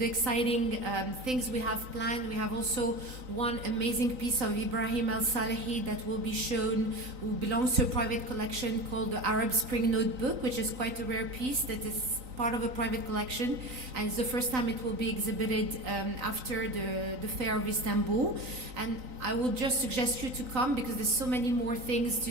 exciting things we have planned. We have also one amazing piece of Ibrahim El Salehi that will be shown, who belongs to a private collection called the Arab Spring Notebook, which is quite a rare piece that is part of a private collection, and it's the first time it will be exhibited after the Fair of Istanbul. And I will just suggest you to come because there's so many more things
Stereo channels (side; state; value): left; late; 3.9 ms